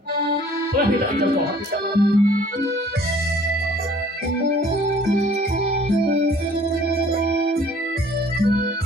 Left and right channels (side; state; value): both; normal; correlation 0.54